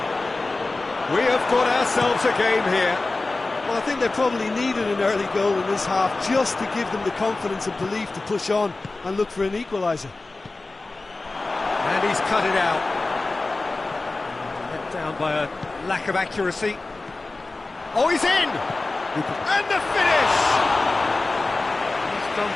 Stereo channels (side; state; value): right; quieter; 3.3 dB